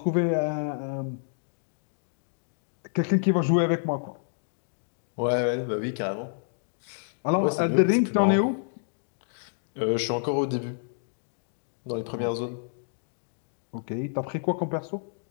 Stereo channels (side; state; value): right; silent; digital silence